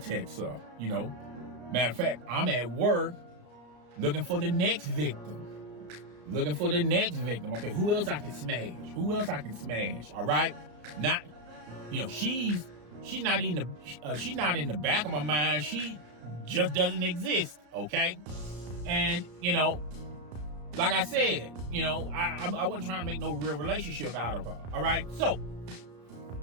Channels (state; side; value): late; left; 34 ms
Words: her, you know. Matter of fact, I'm at work looking for the next victim. Okay, who else I can smash? All right? Not, you know, she's not in the back of my mind. She just doesn't exist, okay? And, you know, like I said, you know, I wasn't trying to make no real relationship out of her, all right? So,